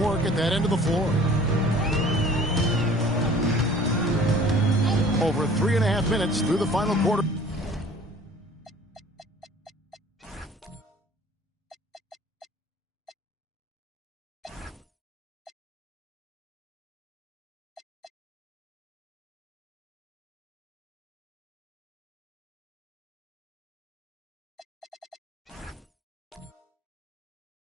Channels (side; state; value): both; normal; correlation 0.49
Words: at that end of the floor. Over 3.5 minutes through the final quarter.